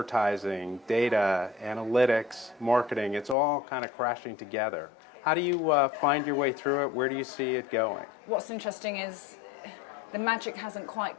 data, analytics, marketing, it's all kind of crashing together. How do you find your way through it? Where do you see it going? What's interesting is the magic hasn't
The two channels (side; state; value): right; drops out; at 3.4 s